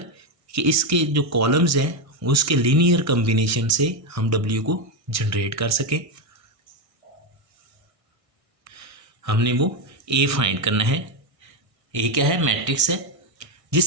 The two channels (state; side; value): late; left; 1.6 ms